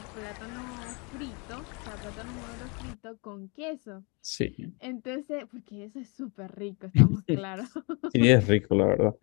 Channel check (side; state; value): right; quieter; 31.7 dB